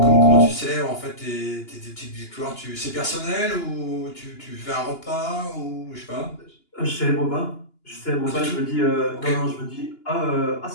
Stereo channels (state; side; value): late; right; 2.9 ms